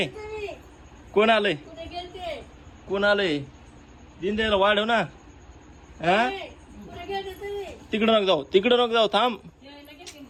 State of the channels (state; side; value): identical; both; correlation 1.00